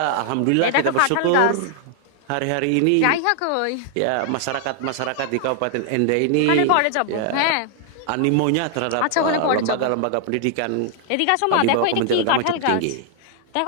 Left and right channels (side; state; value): both; different; correlation 0.00